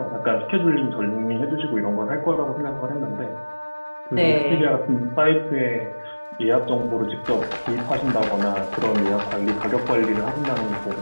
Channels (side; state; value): both; inverted; correlation -1.00